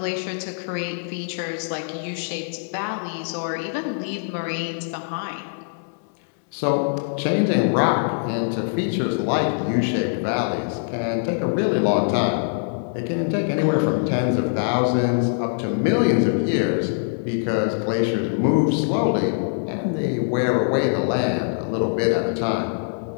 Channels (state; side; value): silent; right; 63 dB below the other